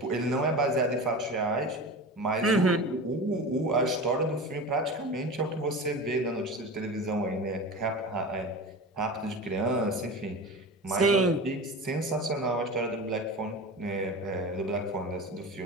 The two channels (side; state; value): both; normal; correlation 0.30